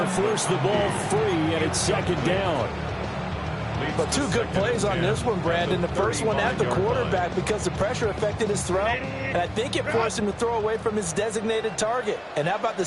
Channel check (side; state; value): both; identical; correlation 1.00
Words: forced the ball free, and it's 2nd down. But 2 good plays on this one, Brandon. The first one at the quarterback because the pressure affected his throw, and I think it forced him to throw away from his designated target. And how about the